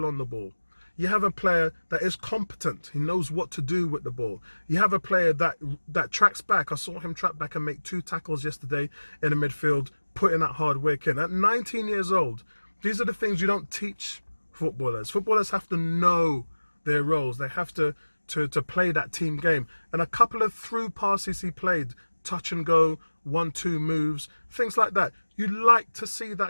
on the ball. You have a player that is competent. He knows what to do with the ball. You have a player that tracks back. I saw him track back and make 2 tackles yesterday in the midfield, putting that hard work in. At 19 years old, these are the things you don't teach footballers. Footballers have to know their roles. They have to play that team game. And a couple of through passes he played, touch and go, 1-2 moves, things like that. You like to see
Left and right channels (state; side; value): inverted; both; correlation -1.00